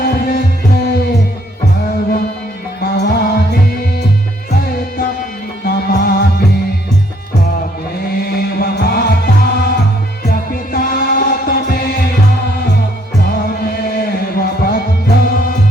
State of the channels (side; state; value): both; normal; correlation 0.67